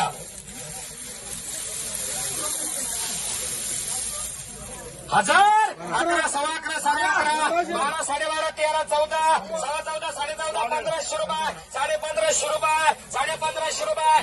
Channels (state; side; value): identical; both; correlation 1.00